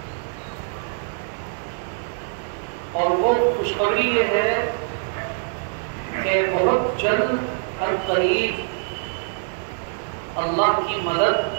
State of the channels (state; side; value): silent; left; digital silence